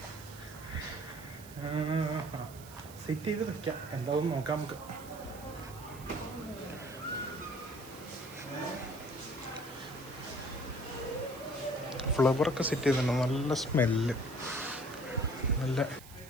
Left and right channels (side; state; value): right; noise; hiss, 18 dB below the sound